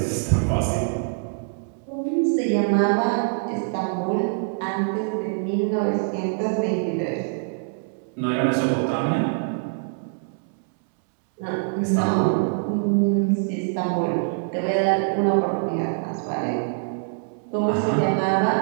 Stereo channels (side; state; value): left; silent; 63 dB below the other